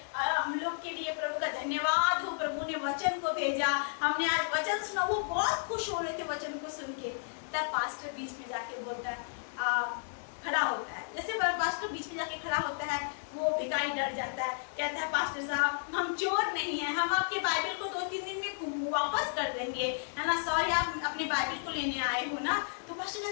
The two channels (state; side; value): silent; right; digital silence